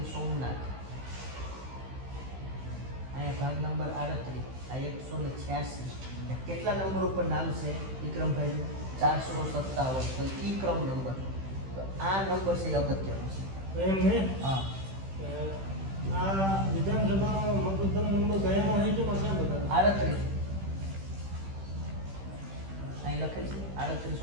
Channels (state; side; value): late; left; 15 ms